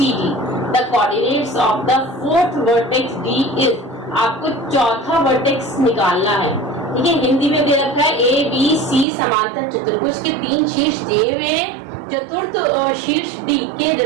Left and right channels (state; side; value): drops out; left; at 9.1 s